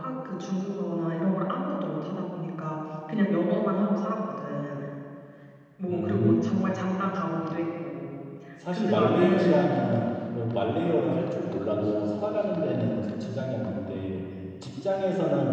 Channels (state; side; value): identical; both; correlation 1.00